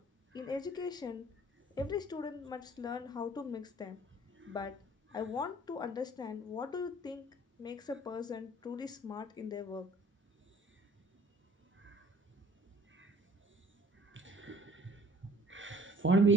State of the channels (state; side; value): normal; both; correlation 0.54